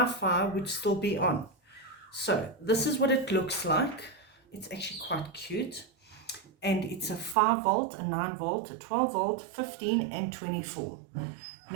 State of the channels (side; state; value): left; drops out; at 7.4 s